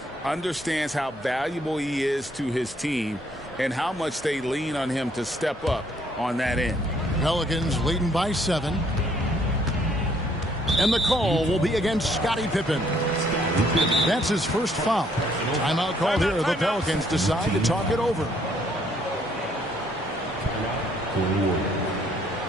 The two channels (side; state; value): both; normal; correlation 0.66